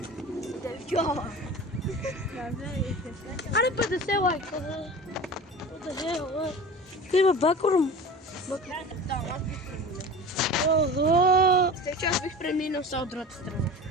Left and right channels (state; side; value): normal; both; correlation 0.35